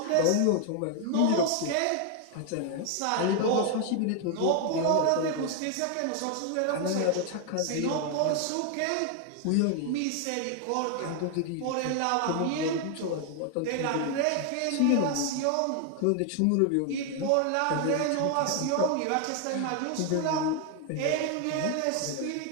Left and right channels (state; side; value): different; both; correlation 0.00